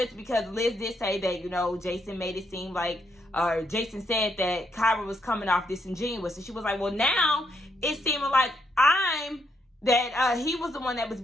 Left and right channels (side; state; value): both; normal; correlation 0.76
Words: because Liz did say that, you know, Jason made it seem like, or Jason said that Kyra was coming off disingenuous. And she was like, well, now it's seeming like he was the one that was